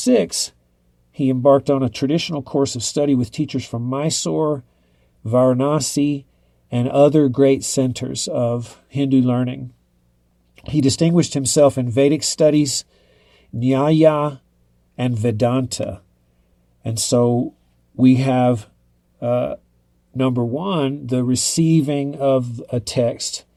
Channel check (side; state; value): both; identical; correlation 1.00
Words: he embarked on a traditional course of study with teachers from Mysore, Varanasi, and other great centers of Hindu learning. He distinguished himself in Vedic studies, Nyaya, and Vedanta. And so we have, number one, the receiving of a text